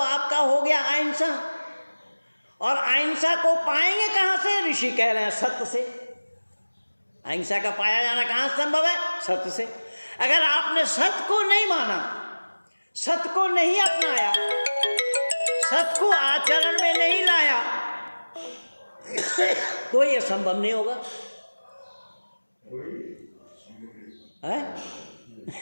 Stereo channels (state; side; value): inverted; both; correlation -1.00